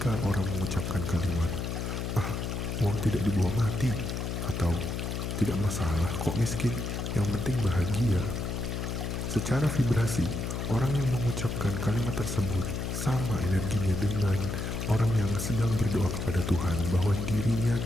orang mengucapkan kalimat, uang tidak dibawa mati, atau tidak masalah kok miskin, yang penting bahagia. Secara vibrasi, orang yang mengucapkan kalimat tersebut sama energinya dengan orang yang sedang berdoa kepada Tuhan bahwa dirinya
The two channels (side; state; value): left; noise; hum, 3 dB below the sound